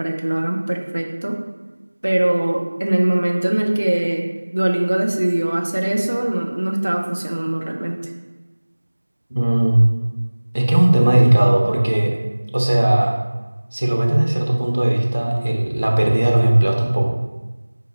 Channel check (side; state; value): both; inverted; correlation -1.00